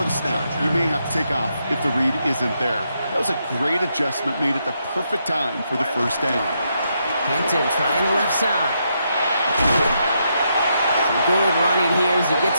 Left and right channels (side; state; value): both; inverted; correlation -0.80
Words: the snap, you may have to take off if the read isn't there. That was a great adjustment made at the perfect time for the first down. Hampton trying the left side. Some good running here as he gets